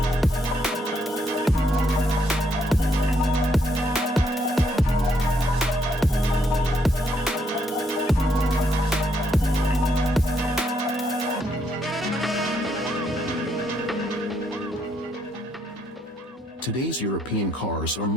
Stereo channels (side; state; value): both; normal; correlation 0.73